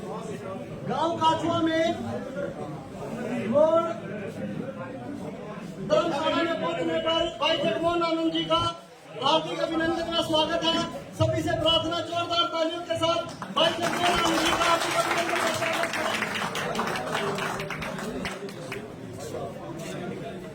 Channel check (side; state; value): both; identical; correlation 1.00